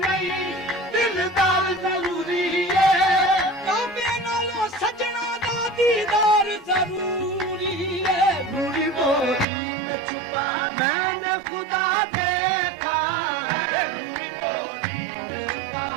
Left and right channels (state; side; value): drops out; left; at 9.5 s